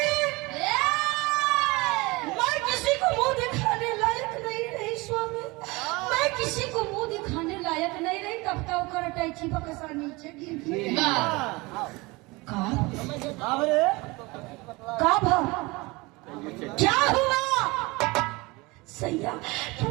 मैं किसी को मुंह दिखाने लायक नहीं रही स्वामी, मैं किसी को मुंह दिखाने लायक नहीं रही। तब तक कर टैची बकसा नीचे गिर क्या हुआ सैया? तुम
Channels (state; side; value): quieter; left; 23.9 dB